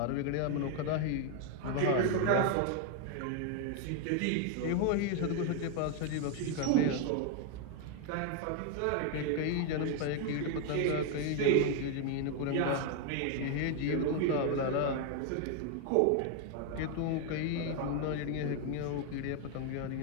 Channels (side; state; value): both; different; correlation 0.01